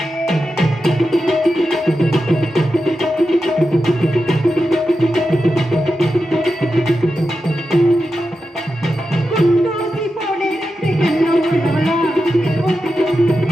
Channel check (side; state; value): both; normal; correlation 0.90